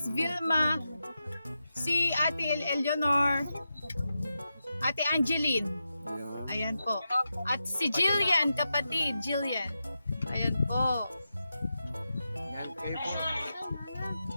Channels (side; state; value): both; inverted; correlation -0.89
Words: Vilma, si Ate Eleanor, Ate Angeline. Ayan po. At si Jillian, kapatid, Jillian. Ayan po. Ayan, kayo po.